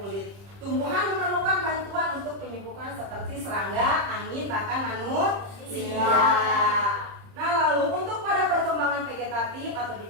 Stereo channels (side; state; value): left; late; 30 ms